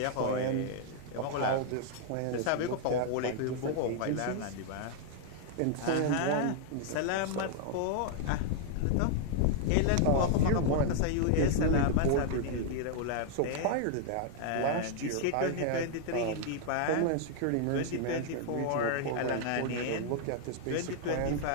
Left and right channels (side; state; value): both; different; correlation 0.00